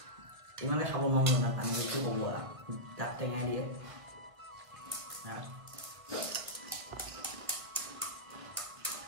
ইমানে খাব নোৱাৰো না পানী কি ক'ব দাঁত টেঙাই দিয়ে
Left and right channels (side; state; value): left; late; 1.5 ms